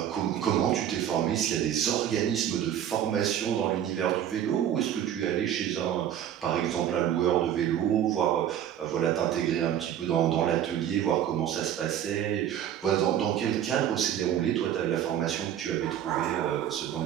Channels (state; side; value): quieter; left; 10.4 dB